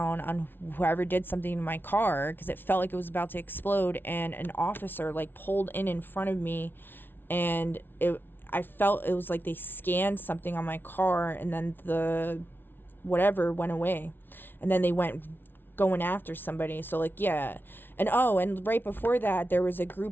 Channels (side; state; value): right; late; 0.10 ms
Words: on whoever did something to my car, because it felt like it was about to explode, and an officer, like, pulled in front of me, and I felt it was like they scanned something on my car, and then the whatever went away. And then they went going after somebody. So like, yeah. And and right before that, there was a